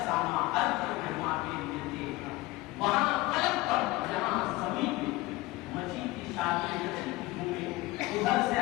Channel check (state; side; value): quieter; right; 20.0 dB